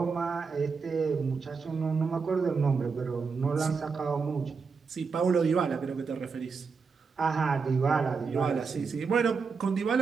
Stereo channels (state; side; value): quieter; left; 5.2 dB